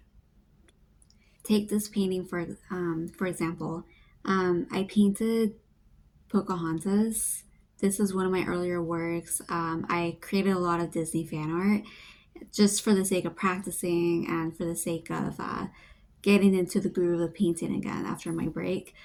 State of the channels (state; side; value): identical; both; correlation 1.00